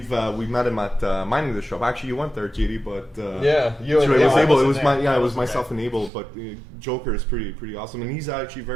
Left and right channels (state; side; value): drops out; left; at 6.1 s